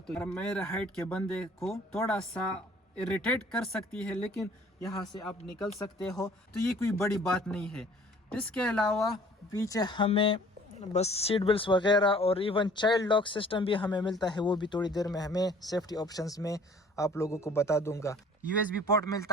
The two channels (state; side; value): normal; both; correlation 0.53